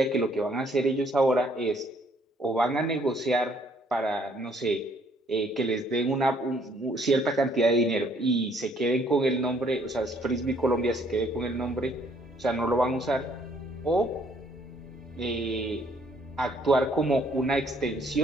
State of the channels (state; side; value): normal; both; correlation 0.64